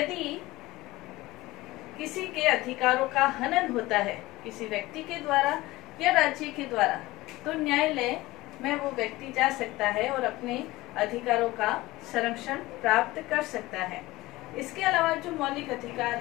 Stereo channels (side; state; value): right; quieter; 19.1 dB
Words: किसी के अधिकारों का हनन होता है किसी व्यक्ति के द्वारा या राज्य के द्वारा, तो न्यायालय में वो व्यक्ति जा सकता है और अपने अधिकारों का संरक्षण प्राप्त कर सकता है। इसके अलावा जो मौलिक अधिकार